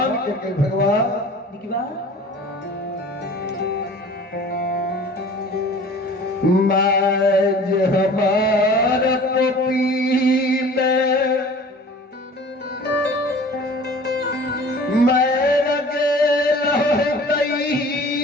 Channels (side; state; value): both; normal; correlation 0.45